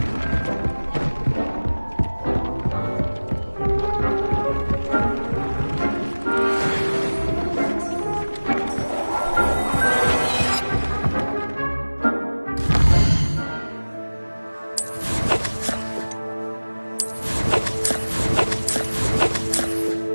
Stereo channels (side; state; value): both; inverted; correlation -1.00